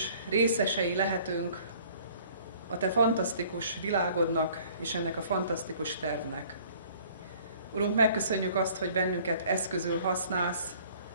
részesei lehetünk a te fantasztikus világodnak és ennek a fantasztikus tervnek. Urunk, megköszönjük azt, hogy bennünket eszközül használsz,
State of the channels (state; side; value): inverted; both; correlation -0.54